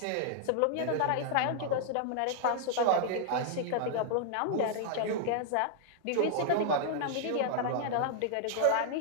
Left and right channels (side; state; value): both; different; correlation -0.01